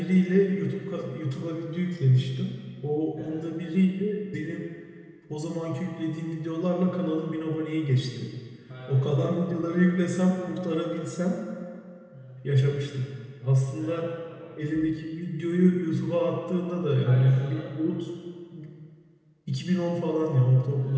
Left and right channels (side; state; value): both; identical; correlation 1.00